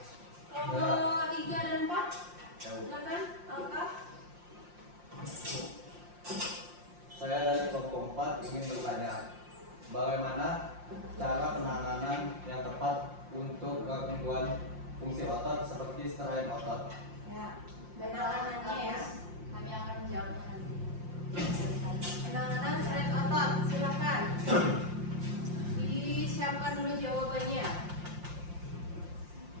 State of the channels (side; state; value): left; late; 5.7 ms